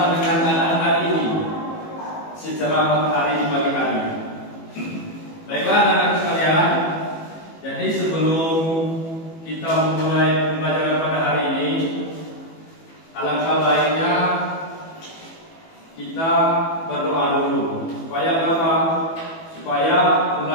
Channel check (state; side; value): late; right; 18 ms